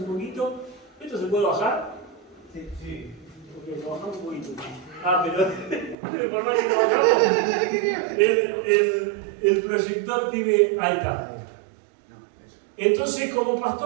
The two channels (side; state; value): left; drops out; at 6.0 s